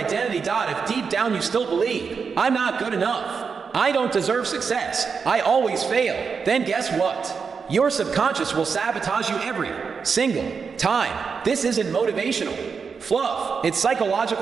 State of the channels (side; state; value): left; quieter; 5.7 dB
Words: If deep down you still believe, I'm not good enough, I don't deserve success, I always fail, then guess what? Your subconscious will sabotage you every single time. This isn't motivational fluff. It's